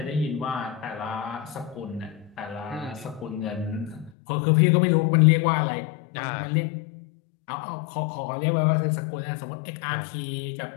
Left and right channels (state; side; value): drops out; right; at 4.1 s